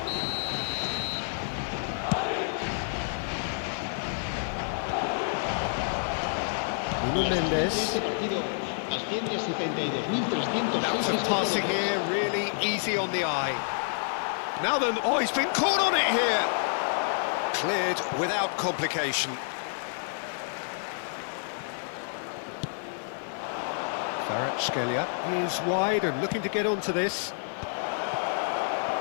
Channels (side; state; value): right; silent; 59 dB below the other